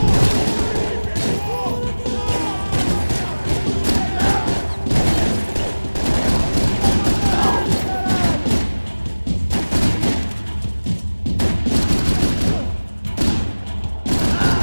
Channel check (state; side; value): inverted; both; correlation -1.00